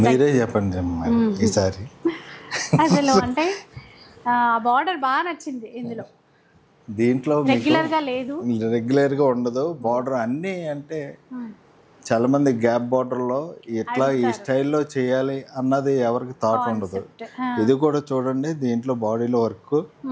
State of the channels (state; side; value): identical; both; correlation 1.00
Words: మీరే చెప్పండి ఈసారి. అసలు అంటే బార్డర్ బాగా నచ్చింది ఇందులో. దీంట్లో రెగ్యులర్గా ఉండదు బార్డర్ అన్నీ. అంటే చాలా మంది గ్యాప్ బార్డర్లో ఇట్లా ఈ స్టైల్లో చేయాలి అన్నది ఎవరికి థాట్ ఉండదు. ఇది కూడా చూడండి, దీంట్లో బాడీలో వర్క్